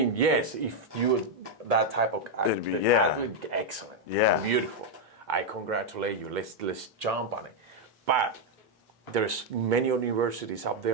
yes, if you're that type of athlete, excellent, beautiful. I congratulate you. Let's jump on it. But there's many universities out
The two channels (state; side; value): normal; both; correlation 0.00